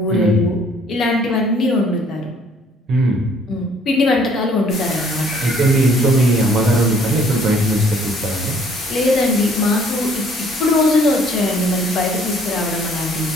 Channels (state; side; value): normal; both; correlation 0.60